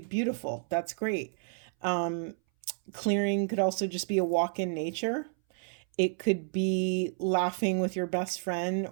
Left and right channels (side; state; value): left; silent; 57 dB below the other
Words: That's great. Clearing could also just be a walk in nature. It could be laughing with your best friend